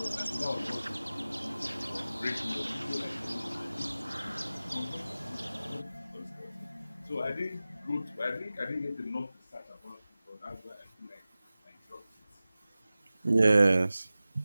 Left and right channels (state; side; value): inverted; both; correlation -0.97